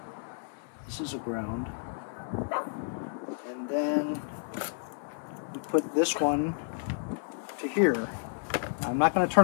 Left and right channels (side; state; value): right; silent; 57 dB below the other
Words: This is a ground, and then you put this one to here. I'm not going to